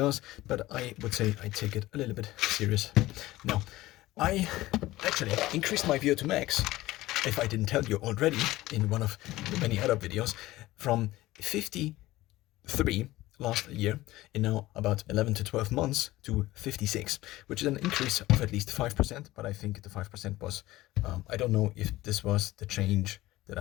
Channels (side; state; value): right; quieter; 17.4 dB